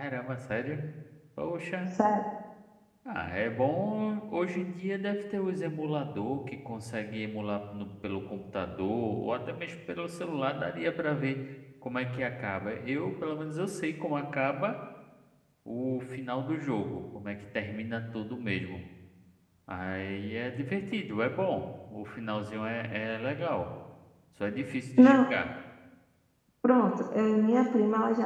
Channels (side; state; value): both; identical; correlation 1.00